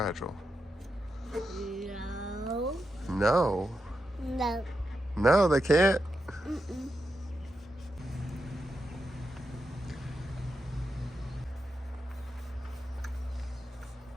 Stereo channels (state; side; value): normal; both; correlation 0.87